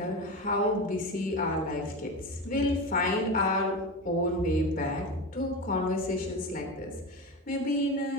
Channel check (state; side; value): normal; both; correlation 0.23